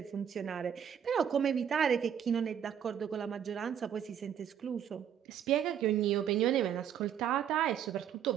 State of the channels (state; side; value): quieter; left; 8.9 dB